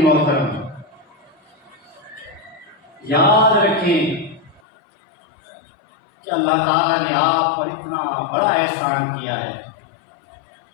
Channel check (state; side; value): drops out; right; at 4.6 s